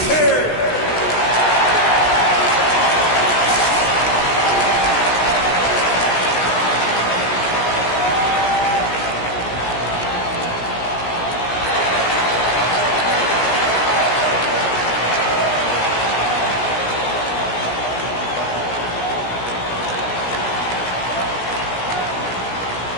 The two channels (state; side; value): late; right; 16 ms